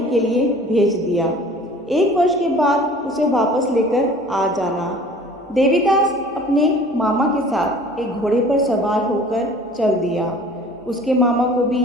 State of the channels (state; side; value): normal; both; correlation 0.47